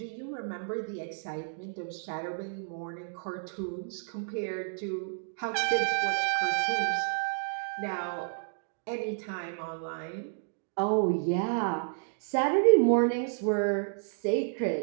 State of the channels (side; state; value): left; silent; digital silence